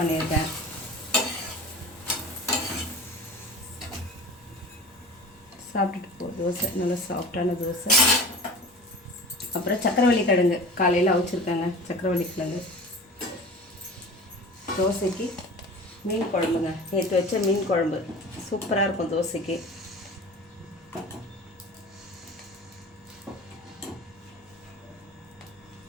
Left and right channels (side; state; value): both; normal; correlation 0.37